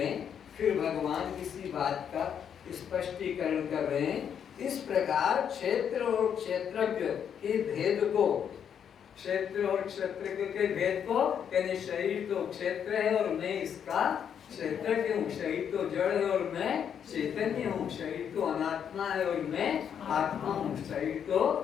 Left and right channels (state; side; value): quieter; right; 8.2 dB